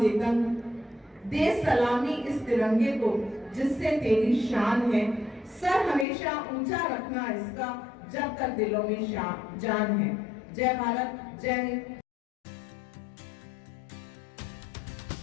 देता हूँ। दे सलामी इस तिरंगे को जिससे तेरी शान है, सर हमेशा ऊंचा रखना इसका जब तक दिलों में जान है। जय भारत, जय हिंद।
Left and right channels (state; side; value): drops out; right; at 6.1 s